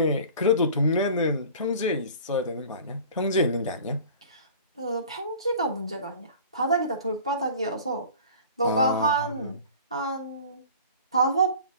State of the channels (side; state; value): both; inverted; correlation -0.42